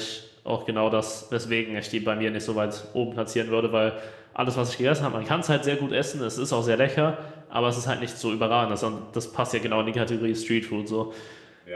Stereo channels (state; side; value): identical; both; correlation 1.00